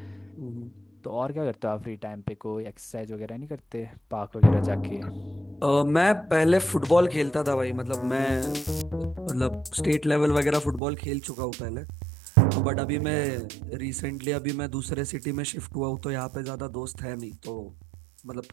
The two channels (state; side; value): drops out; left; at 10.8 s